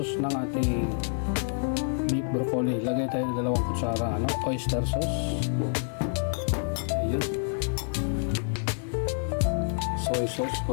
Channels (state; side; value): silent; right; 59 dB below the other